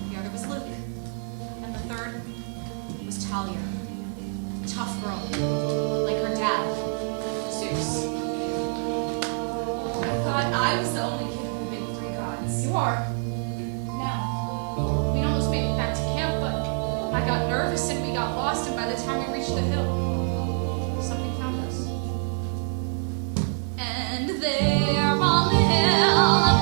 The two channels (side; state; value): left; silent; 55 dB below the other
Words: The other was Luke. And the third was Talia. Tough girl. Like her dad, Zeus. I thought I was the only kid of the big 3 gods. You are. Now, we'd almost made it back to camp, but I got nervous and we got lost, and by the time we reached the hill, something found us. And there on the hill up